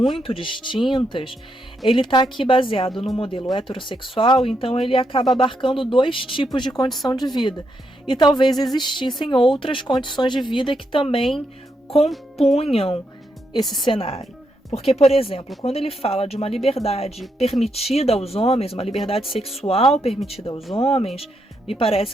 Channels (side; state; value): both; normal; correlation 0.80